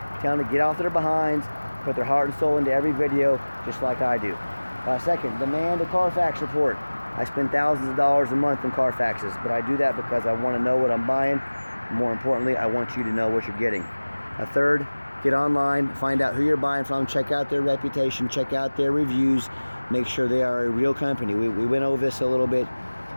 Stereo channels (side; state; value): both; inverted; correlation -1.00